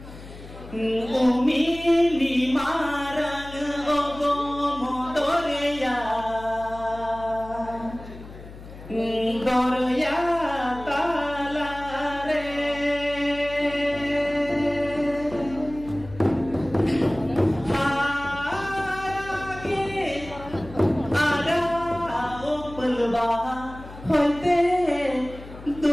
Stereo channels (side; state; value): left; noise; hum, 15 dB below the sound